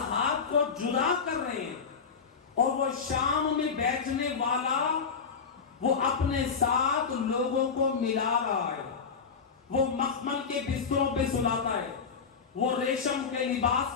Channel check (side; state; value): right; quieter; 5.7 dB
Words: کو جدا کر رہے ہیں، اور وہ شام میں بیٹھنے والا وہ اپنے ساتھ لوگوں کو ملا رہا ہے. وہ مخمل کے بستروں پہ سلاتا ہے، وہ ریشم کے